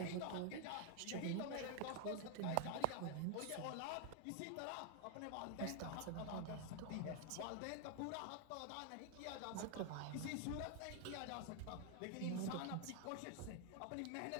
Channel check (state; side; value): different; both; correlation 0.00